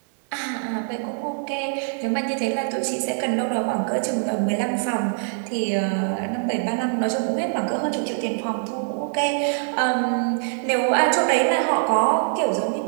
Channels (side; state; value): left; silent; digital silence